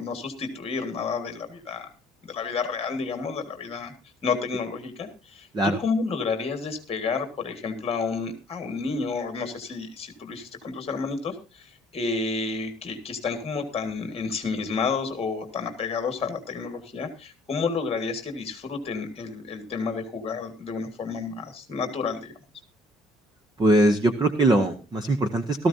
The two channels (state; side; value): normal; both; correlation 0.59